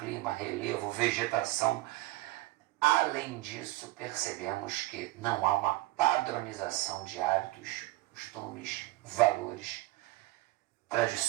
relevo, vegetação. Além disso, percebemos que não há uma padronização de hábitos, costumes, valores,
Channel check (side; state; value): left; quieter; 18.8 dB